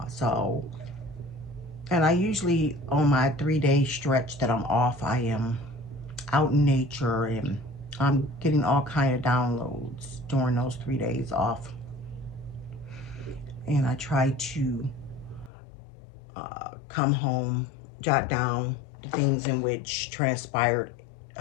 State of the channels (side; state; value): right; drops out; at 15.5 s